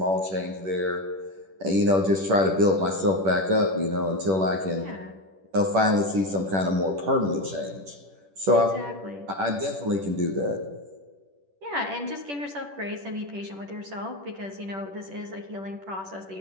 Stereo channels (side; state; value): left; late; 10 ms